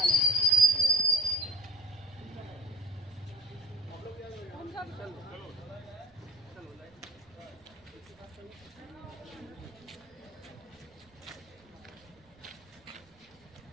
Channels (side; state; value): right; noise; rumble, 29 dB below the sound